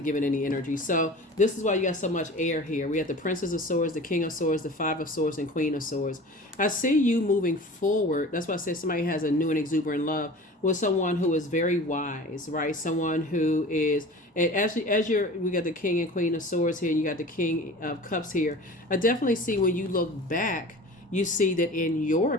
give it any energy. So this is why you got so much air here. We have the Princess of Swords, the King of Swords, the Five of Swords, and Queen of Swords. I see you moving forward. That's why I said somebody has a new and exuberant love with someone who is very wise, right? Someone who is, and we got the King and Queen of Swords here, and you got the King of Cups here. I definitely see when you look back, you see that in your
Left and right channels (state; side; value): normal; both; correlation 0.39